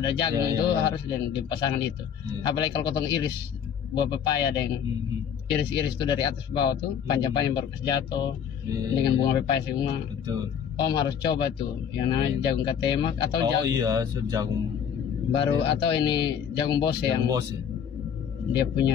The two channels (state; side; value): quieter; right; 8.0 dB